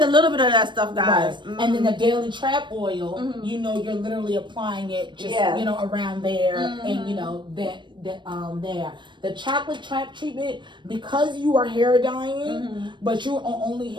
a little bit of that stuff, guys. And then the daily trap oil, you know, you're literally applying it just, you know, around there and, you know, there. The chocolate trap treatment, because you are hair dyeing, but you're only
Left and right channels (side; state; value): left; late; 0.22 ms